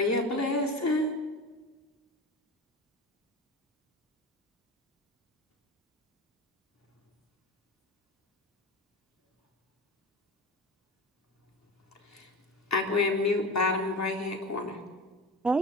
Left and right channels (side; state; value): both; normal; correlation 0.29